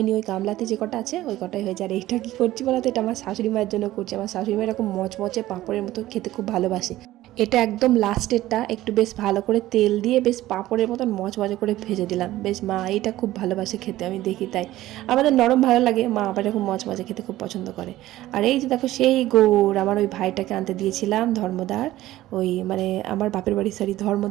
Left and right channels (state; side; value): quieter; left; 15.5 dB